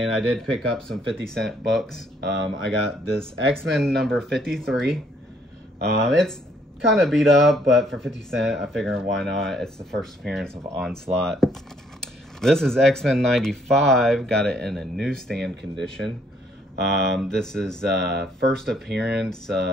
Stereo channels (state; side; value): normal; both; correlation 0.67